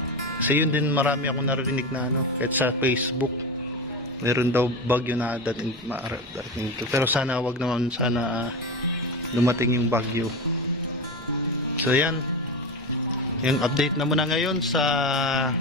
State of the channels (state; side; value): normal; both; correlation 0.21